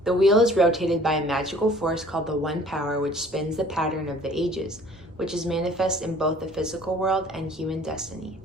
The wheel is rotated by a magical force called the One Power, which spins the pattern of the ages, which is manifest in both the physical world and human destiny.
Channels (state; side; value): normal; both; correlation 0.52